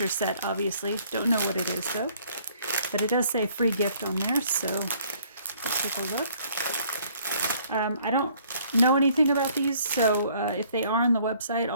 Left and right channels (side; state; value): both; inverted; correlation -0.61